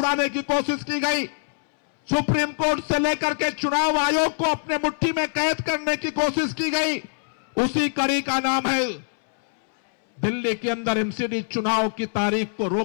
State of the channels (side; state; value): right; silent; 63 dB below the other